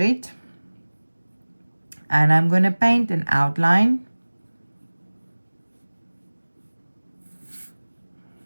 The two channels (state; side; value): inverted; both; correlation -1.00